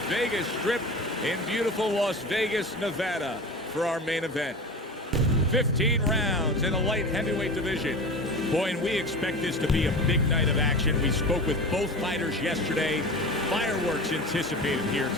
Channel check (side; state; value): both; normal; correlation 0.32